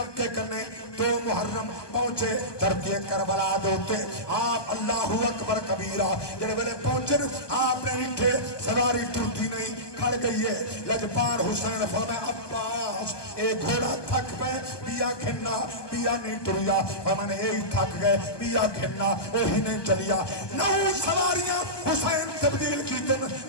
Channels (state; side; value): late; right; 1.2 ms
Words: کرنے 2 محرم پہنچے ترکیے کربلا دوتے آپ اللہ اکبر کبیرہ جڑے ویلے پہنچن آپ نے نٹھے سواری ٹرتی نہیں کھڑ گئی ہے لجپال حسین فرمایا عباس اے گھوڑا تھک پہ بیا کھنا بیا نہیں ٹریا فرمانے اے تھک گئے بیا کھنا وہی نہیں چلیا نو سواریاں حسین تبدیل کی دن